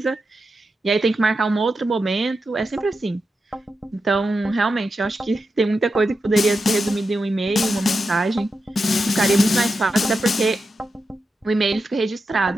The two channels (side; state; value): both; normal; correlation 0.89